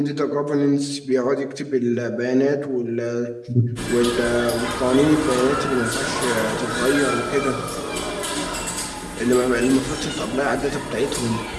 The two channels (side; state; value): both; identical; correlation 1.00